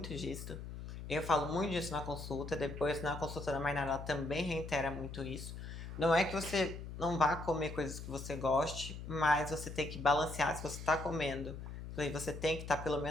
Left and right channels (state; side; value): noise; left; hum, 9 dB below the sound